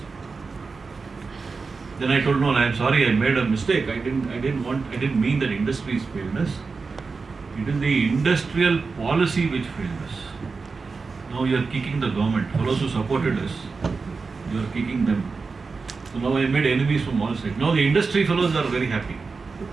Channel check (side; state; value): left; quieter; 4.5 dB